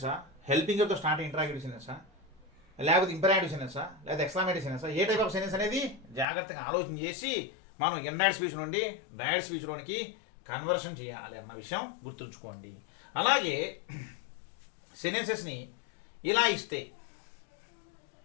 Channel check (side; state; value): right; drops out; at 6.2 s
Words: హెల్పింగ్తో స్టార్ట్ ఇంటరాగేటివ్ సెంటెన్సా, లేకపోతే ఇంపరేటివ్ సెంటెన్సా, లేదా ఎక్స్క్లమేటివ్ సెంటెన్సా, ఏ టైప్ ఆఫ్ సెంటెన్స్ అనేది జాగ్రత్తగా ఆలోచన చేసి మనం ఇండైరెక్ట్ స్పీచ్ నుండి డైరెక్ట్ స్పీచ్లోనికి కన్వర్షన్ చేయాలి అన్న విషయం గుర్తుంచుకోండి. అలాగే సెంటెన్సెస్ని ఇలా ఇస్తే